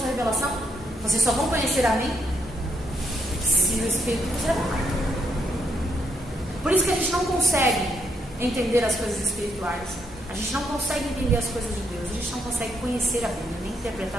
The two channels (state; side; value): normal; both; correlation 0.76